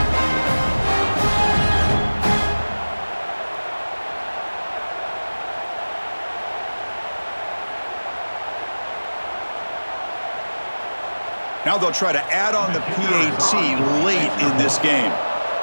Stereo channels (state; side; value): inverted; both; correlation -1.00